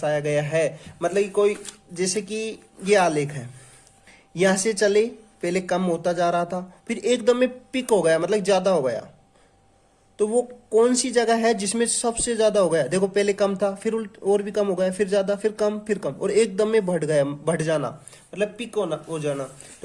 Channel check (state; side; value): identical; both; correlation 1.00